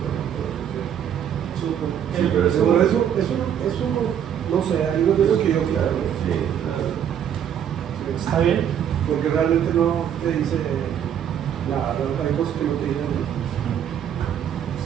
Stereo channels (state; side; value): quieter; left; 9.2 dB